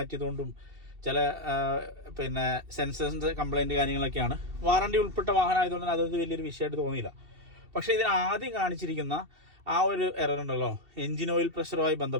ചില സെൻസേഴ്സിൻ്റെ കംപ്ലൈൻറ്റ് കാര്യങ്ങളൊക്കെയാണ്. വാറണ്ടി ഉൾപ്പെട്ട വാഹനമായതുകൊണ്ട് അതൊരു വലിയൊരു വിഷയമായിട്ട് തോന്നിയില്ല. പക്ഷേ ഇതിന് ആദ്യം കാണിച്ചിരിക്കുന്ന ആ ഒരു എറർ ഉണ്ടല്ലോ, എൻജിൻ ഓയിൽ പ്രഷറുമായി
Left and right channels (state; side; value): late; left; 2.7 ms